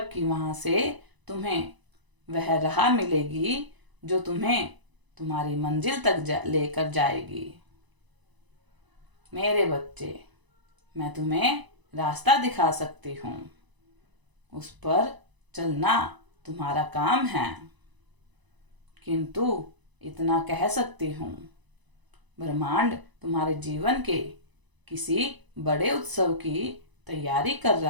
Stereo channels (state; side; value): late; left; 1.0 ms